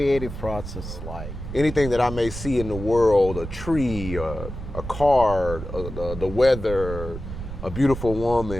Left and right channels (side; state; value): right; noise; rumble, 9 dB below the sound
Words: process like? Anything that I may see in the world, a tree, a car, the weather, a beautiful